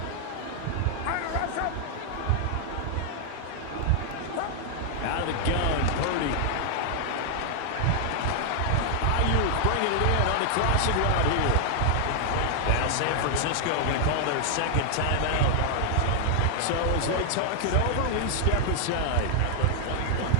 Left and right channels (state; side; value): different; both; correlation 0.00